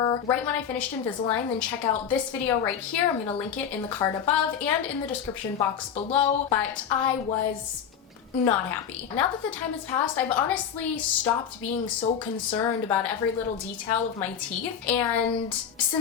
right when I finished Invisalign, then check out this video right here. I'm gonna link it in the card above and in the description box below, but I was not happy. Now that the time has passed, I've honestly stopped being so concerned about every little detail of my teeth, and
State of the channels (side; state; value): right; quieter; 8.1 dB